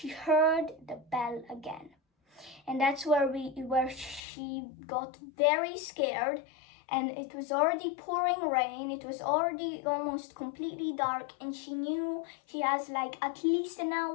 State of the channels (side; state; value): right; drops out; at 4.2 s